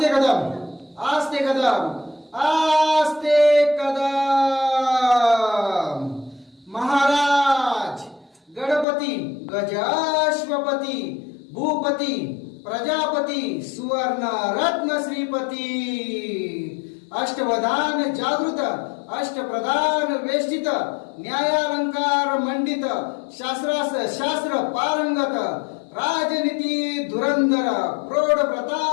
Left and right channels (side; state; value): right; drops out; at 8.8 s